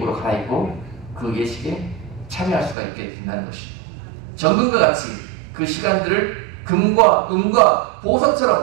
갈아입고 그 예식에 참여할 수가 있게 된다는 것입니다. 정금과 같이 그 시간들을 금과 은과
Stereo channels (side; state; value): left; drops out; at 2.8 s